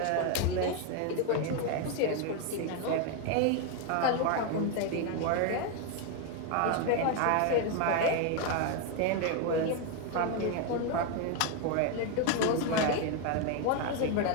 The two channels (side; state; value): both; different; correlation 0.01